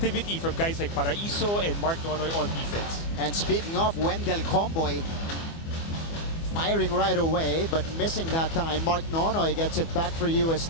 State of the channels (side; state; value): right; late; 24 ms